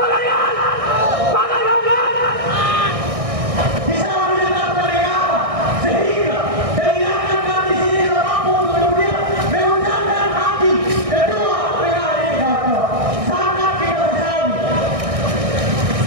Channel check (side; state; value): left; late; 1.6 ms